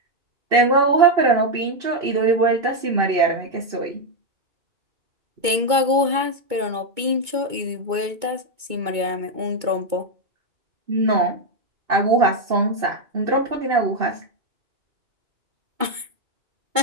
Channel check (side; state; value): left; late; 2.2 ms